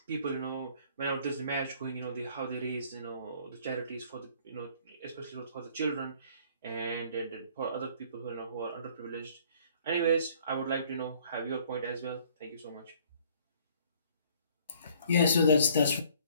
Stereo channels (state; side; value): inverted; both; correlation -0.58